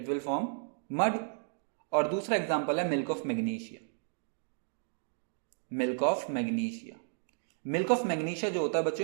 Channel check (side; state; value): left; silent; digital silence